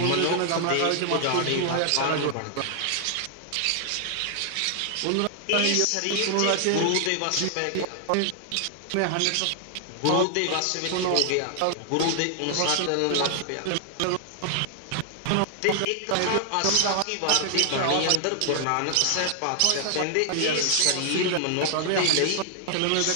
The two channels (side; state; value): both; different; correlation 0.00